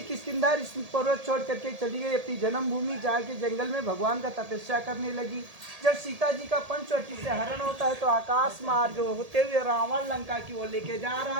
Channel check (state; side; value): late; left; 1.8 ms